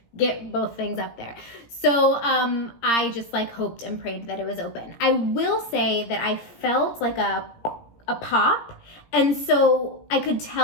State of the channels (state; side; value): late; right; 17 ms